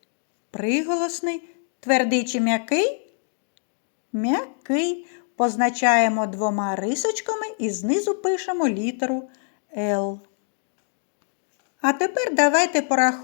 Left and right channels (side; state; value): right; silent; 62 dB below the other